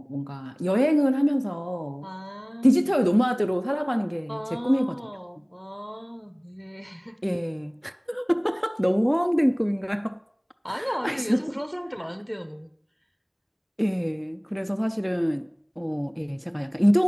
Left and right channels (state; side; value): identical; both; correlation 1.00